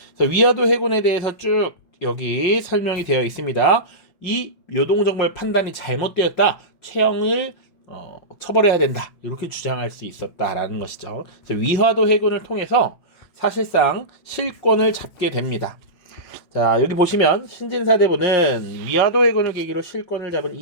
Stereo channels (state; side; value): late; right; 5.5 ms